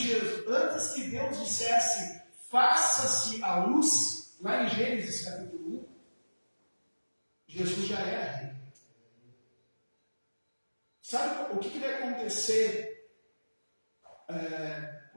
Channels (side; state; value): both; inverted; correlation -1.00